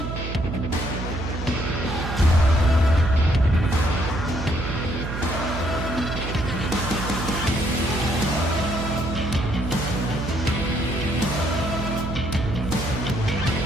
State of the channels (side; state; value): right; noise; hum, 6 dB below the sound